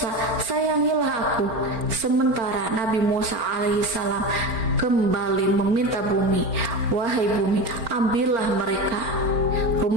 sayangilah aku." Sementara Nabi Musa alaihissalam kembali meminta bumi, "Wahai bumi, ambillah mereka."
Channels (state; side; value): late; left; 4.4 ms